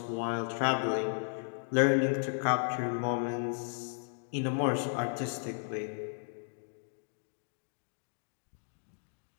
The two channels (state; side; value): silent; right; digital silence